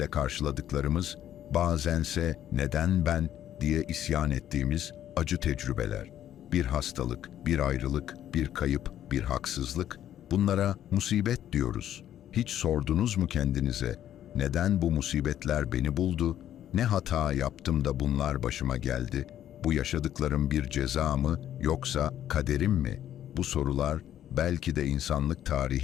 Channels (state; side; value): quieter; right; 11.2 dB